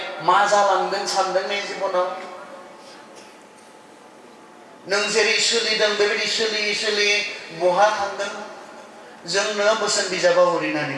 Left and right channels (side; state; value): both; identical; correlation 1.00